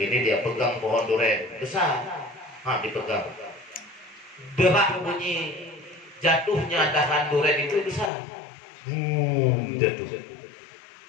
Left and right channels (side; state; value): right; drops out; at 8.1 s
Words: dia pegang pohon duren besar. Dipegang. Derak bunyi jatuhnya dahan duren itu besar. Jatuh.